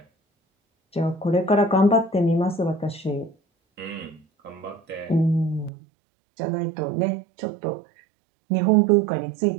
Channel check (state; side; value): drops out; left; at 5.7 s